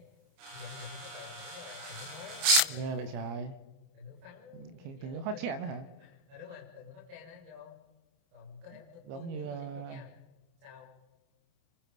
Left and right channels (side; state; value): left; late; 30 ms